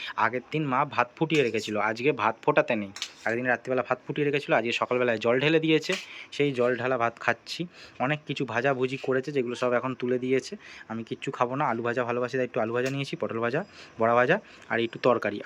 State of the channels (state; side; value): identical; both; correlation 1.00